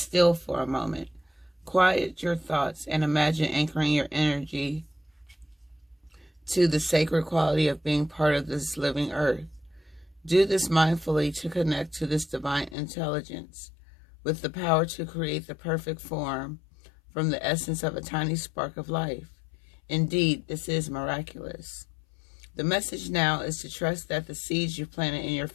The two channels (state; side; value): drops out; right; at 12.8 s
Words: for a moment. Quiet your thoughts and imagine anchoring your energy to the sacred quality of being part of this living earth. Do this mindfully to connect to this divine intelligence with the power to create the perfect form from the essence of a tiny spark of life. Indeed, this is miraculous. The message now is to trust that the seeds you planted in your